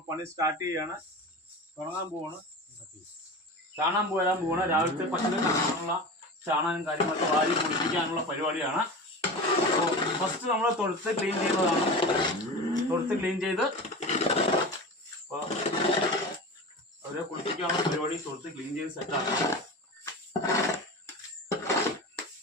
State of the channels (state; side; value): normal; both; correlation 0.30